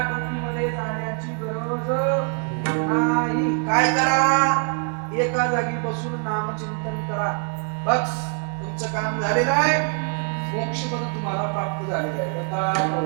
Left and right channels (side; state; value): left; quieter; 39.6 dB